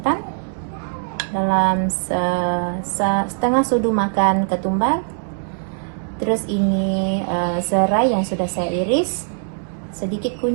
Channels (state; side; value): silent; left; digital silence